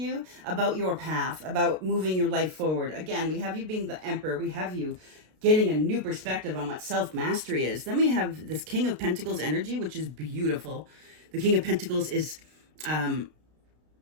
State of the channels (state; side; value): late; left; 32 ms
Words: about your path, about moving your life forward. Again, we have you being the Emperor. We have you getting a new perspective on what self-mastery is. Then we have this King of Pentacles energy, which is beautiful. The King of Pentacles is